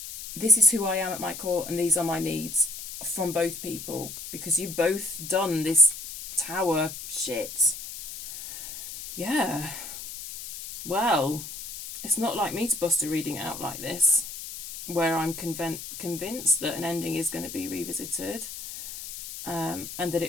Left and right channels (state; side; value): noise; left; hiss, 9 dB below the sound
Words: this is who I am at my core, and these are my needs from both people, because you've both done this Tower shit. Yeah. Well, it's not like me to bust a reading out like this, where I'm convinced that an ending is going to be revisited, and that